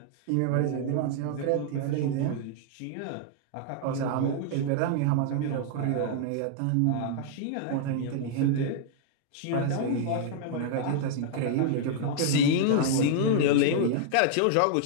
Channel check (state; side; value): different; both; correlation -0.01